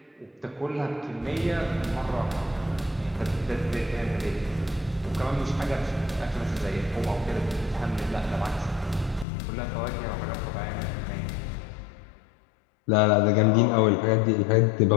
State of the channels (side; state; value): right; drops out; at 9.2 s